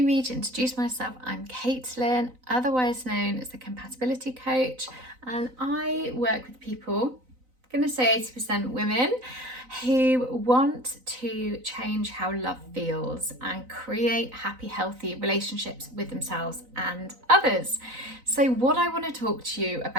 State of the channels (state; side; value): late; left; 3.9 ms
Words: to introduce myself, I'm Caitlin, otherwise known as the Compatibility Coach, and I work with people, I'm going to say 80% women, who want to change how love feels and create happy, healthy relationships with themselves and others. So what I want to talk to you